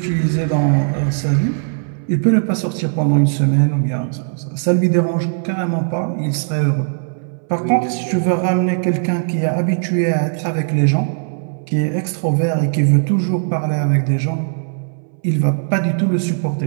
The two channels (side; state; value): left; silent; 63 dB below the other